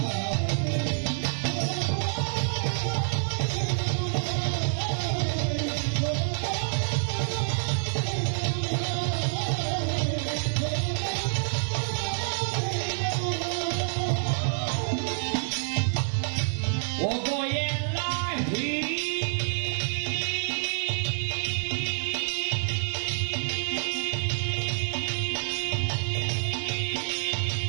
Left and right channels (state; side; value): silent; left; 59 dB below the other